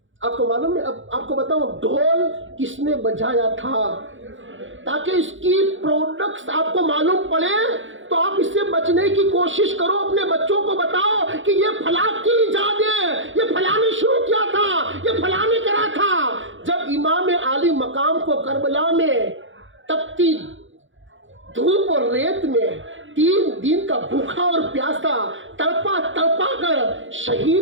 آپ کو معلوم ہے؟ اب آپ کو بتاؤں ڈھول کس نے بجایا تھا، تاکہ اس کی پروڈکٹس آپ کو معلوم پڑے تو آپ اس سے بچنے کی کوشش کرو۔ اپنے بچوں کو بتاؤ کہ یہ فلاں کی ایجاد ہے، یہ فلاں نے شروع کیا تھا، یہ فلاں نے کرا تھا۔ جب امام عالی مقام کو کربلا میں تپتی دھوپ اور ریت میں 3 دن کا بھوکا اور پیاسا تڑپا کر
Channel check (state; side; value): late; left; 0.56 ms